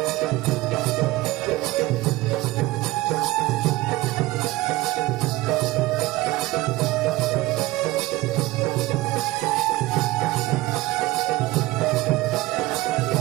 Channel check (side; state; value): left; quieter; 18.8 dB